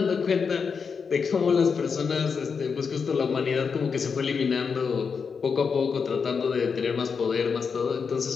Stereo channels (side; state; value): right; quieter; 5.8 dB